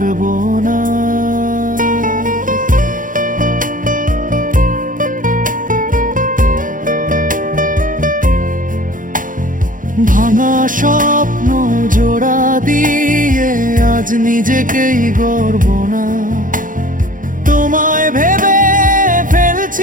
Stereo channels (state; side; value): late; left; 0.39 ms